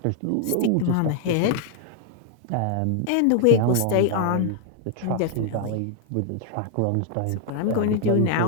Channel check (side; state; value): both; different; correlation 0.00